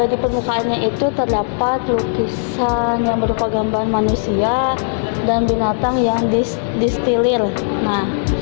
di permukaannya itu terdapat lukisan yang berupa gambar manusia dan binatang yang distilir. Nah,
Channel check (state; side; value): silent; right; digital silence